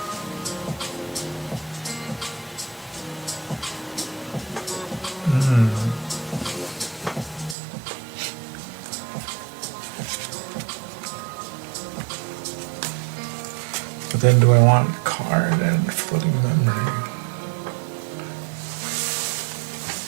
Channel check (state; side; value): drops out; left; at 7.6 s